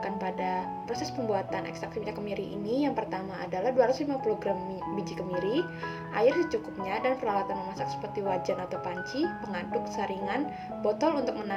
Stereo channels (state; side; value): identical; both; correlation 1.00